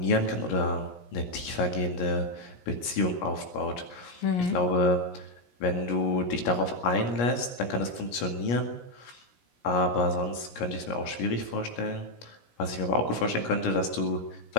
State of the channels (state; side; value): late; right; 17 ms